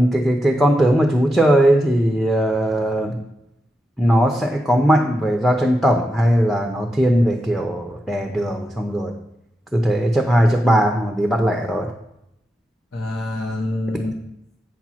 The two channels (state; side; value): normal; both; correlation 0.87